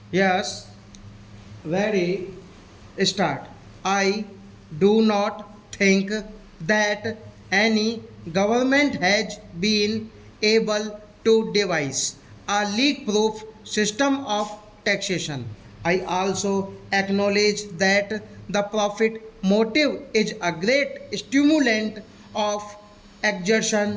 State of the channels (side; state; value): both; identical; correlation 1.00